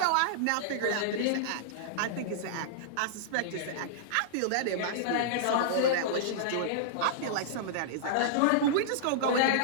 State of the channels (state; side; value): different; both; correlation -0.02